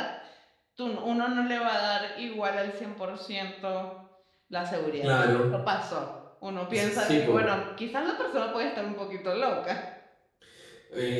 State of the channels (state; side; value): identical; both; correlation 1.00